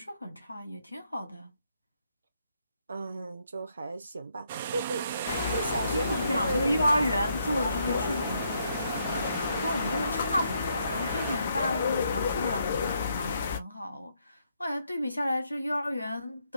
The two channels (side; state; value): both; inverted; correlation -0.75